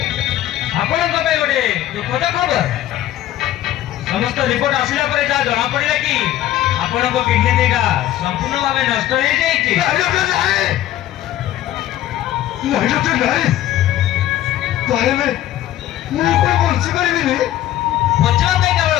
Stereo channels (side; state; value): right; quieter; 13.2 dB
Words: ଆପଣଙ୍କ ପାଇଁ ଗୋଟେ ଦୁଃଖଦ ଖବର। ସମସ୍ତ ରିପୋର୍ଟ ଆସିଲା ପରେ ଯାହା ଜଣା ପଡିଲା କି ଆପଣଙ୍କ କିଡନୀ ଦିଟା ସମ୍ପୂର୍ଣ୍ଣ ଭାବେ ନଷ୍ଟ ହେଇଯାଇଛି। ନାଇଁ ଡକ୍ଟର ନାଇଁ, ତାହେଲେ ମୁଁ କଣ ବଞ୍ଚି ପାରିବିନି? ବଞ୍ଚିବା ପାଇଁ କେବଳ